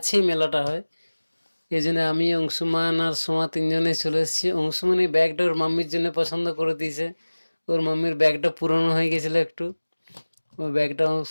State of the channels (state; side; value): inverted; both; correlation -1.00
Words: মেলাটা হয়। এই জন্য আমি, অংশুমান আর সোমা তিনজনে চলে এসেছি। অংশুমান এই ব্যাগটা ওর মাম্মির জন্য পছন্দ করে দিয়েছে। ওর মাম্মির ব্যাগটা পুরনো হয়ে গেছিল একটু। ওই ব্যাগটা